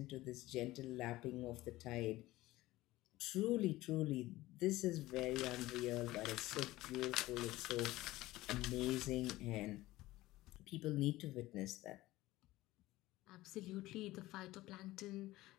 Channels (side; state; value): right; quieter; 17.6 dB